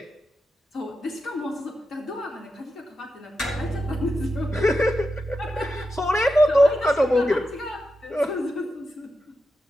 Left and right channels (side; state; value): both; normal; correlation 0.88